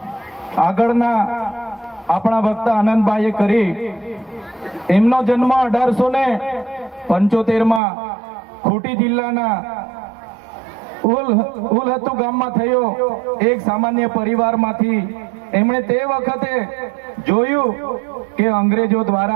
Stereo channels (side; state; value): left; drops out; at 7.8 s